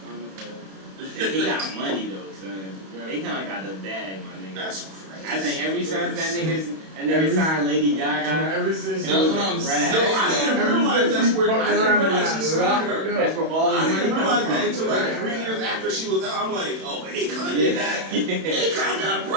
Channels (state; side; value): late; left; 31 ms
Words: forever. he got money though, son. Akon got the bag, my nigga. That's crazy. I think every time that nigga signed Lady Gaga. Ever since That's what I'm saying. No, I didn't realize that's where. I didn't realize she signed her. That's where all I his money didn't realize comes that from. until like 3 years after she was out. I'm like, oh, Akon did that. Akon got